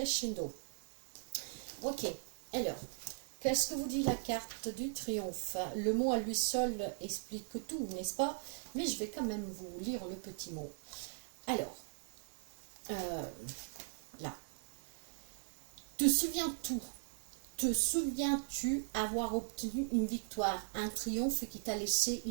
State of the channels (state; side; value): silent; left; digital silence